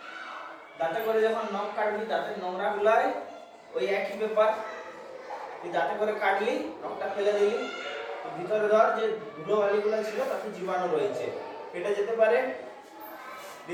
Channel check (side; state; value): both; identical; correlation 1.00